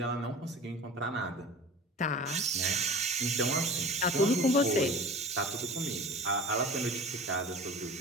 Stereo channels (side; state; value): both; normal; correlation 0.38